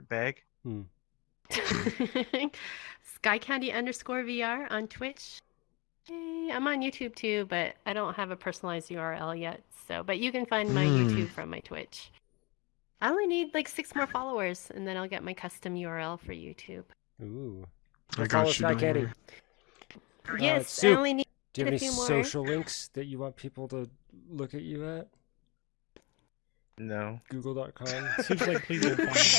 Skycandy_VR on Twitch. Hey, I'm on YouTube too, but I don't have a personalized URL yet. But you can find my YouTube from my Twitch. I only need like 6 more followers, and then I'll get my custom URL for YouTube. Ooh. I Go follow got you, don't Skycandy. worry. Yes, I Soup, only need do you have a any few more. social links that you want people to look at you at? No. Google.com. Soup's like, please don't find me.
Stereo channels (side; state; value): right; quieter; 26.6 dB